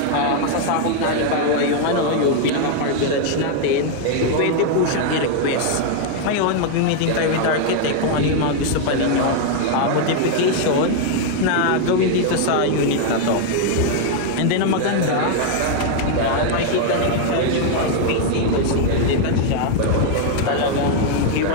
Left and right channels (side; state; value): both; different; correlation 0.00